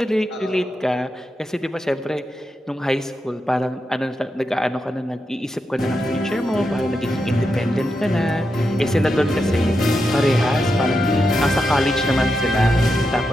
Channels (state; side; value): normal; both; correlation 0.86